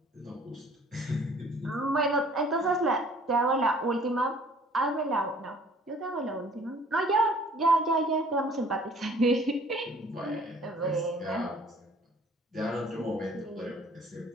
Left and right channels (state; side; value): normal; both; correlation 0.54